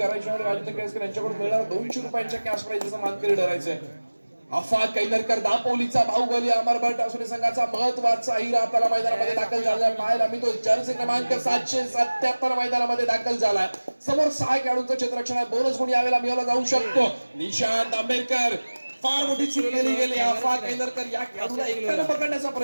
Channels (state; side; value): inverted; both; correlation -1.00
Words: आणि राजेंद्र केळसकर यांच्याकडून मिळणार 200 रुपयांच्या कॅश प्राइजचा मानकरी ठरायचंय. अफाक कैनरकर दापोलीचा बाहुबली अमरभट असुरी संघाचा महत्वाचा हिरा आपल्याला मैदानामध्ये दाखल झालाय. पाहायला मी तो जर्सी क्रमांक 777 मैदानामध्ये दाखल झालाय. समोर 6 खेळाडूंचं क्षेत्ररक्षण आहे. बोनस गुण यावेळेला मिळवला जाऊ शकतो. निशांत आंबेडकर फार मोठी चूक केली गेली. अफाक कैनरकर या खेळाडूला एकट्याने पकडण्याचा